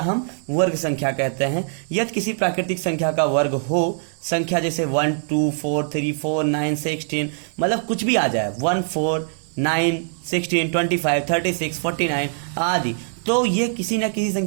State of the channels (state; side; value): silent; left; 61 dB below the other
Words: वर्ग संख्या कहते हैं। यदि किसी प्राकृतिक संख्या का वर्ग हो, संख्या जैसे 1 2 4 3 4 9 16, मतलब कुछ भी आ जाए, 1 4 9 16 25 36 49 आदि, तो ये किसी न किसी